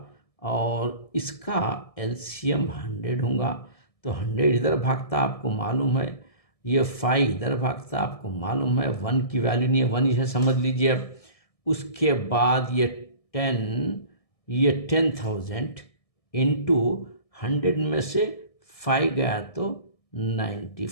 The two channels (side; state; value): right; late; 1.6 ms